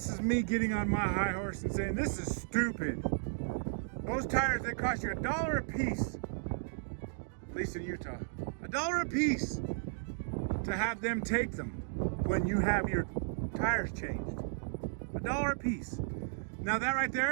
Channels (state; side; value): silent; left; digital silence